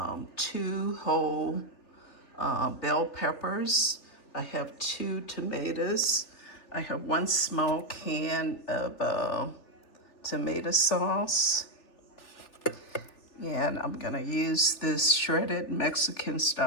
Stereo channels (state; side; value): late; right; 3.4 ms